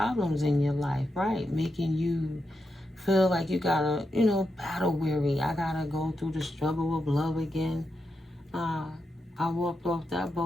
in your life, right? Making you feel like you gotta, battle weary. I gotta go through the struggle of love again. I walked off that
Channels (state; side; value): normal; both; correlation 0.86